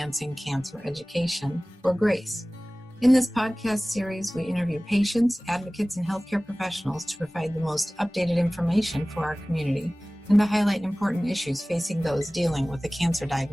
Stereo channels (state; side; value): normal; both; correlation 0.98